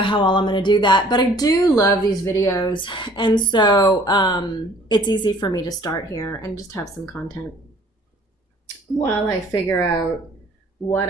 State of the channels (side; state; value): both; normal; correlation 0.54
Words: how well I'm going to do that, but I do love these videos. And so, it's easy for me to start here and just have some content while I figure out what